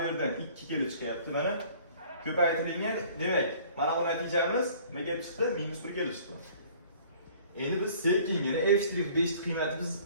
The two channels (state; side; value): inverted; both; correlation -0.52